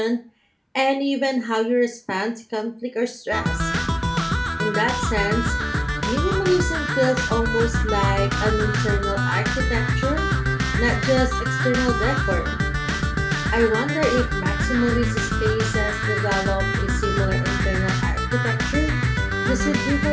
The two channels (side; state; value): both; identical; correlation 1.00